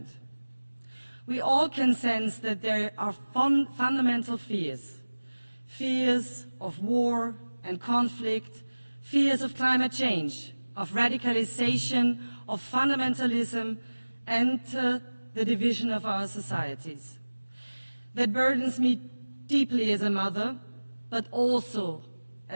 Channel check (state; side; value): inverted; both; correlation -1.00